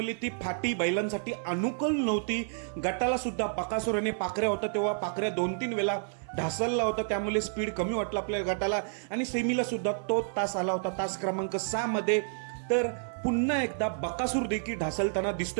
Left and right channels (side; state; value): left; silent; 56 dB below the other